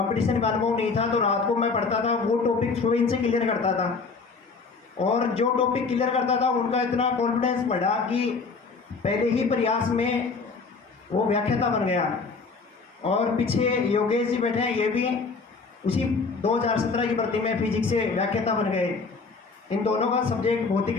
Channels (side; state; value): right; quieter; 4.5 dB